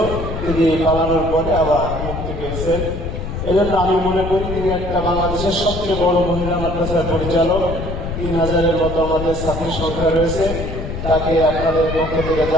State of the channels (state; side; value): noise; left; rumble, 6 dB below the sound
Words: তিনি পালানোর পরে আবার মুক্তি পেয়েছেন। এই জন্য আমি মনে করি তিনি একটা বাংলাদেশের সবচেয়ে বড় মহিলা মাদ্রাসার পরিচালক। 3000-এর মতো আমাদের ছাত্রী সংখ্যা রয়েছে। তাকে আপনাদের পক্ষ থেকে